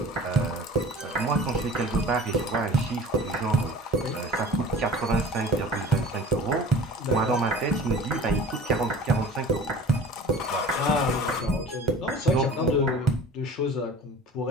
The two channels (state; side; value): normal; both; correlation 0.42